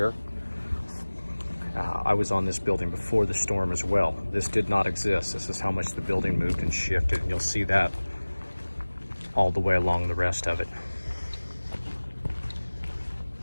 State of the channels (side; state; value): both; inverted; correlation -1.00